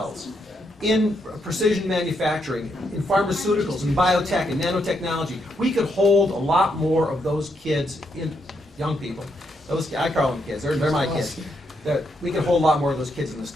in precision manufacturing, in pharmaceuticals, in biotech, and nanotechnology, we could hold a lot more of those kids, young people. I call them kids. They're my kids. That we could hold a lot more of those kids in the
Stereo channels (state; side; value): normal; both; correlation 0.78